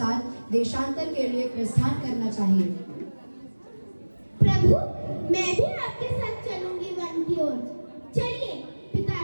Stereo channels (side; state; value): both; inverted; correlation -1.00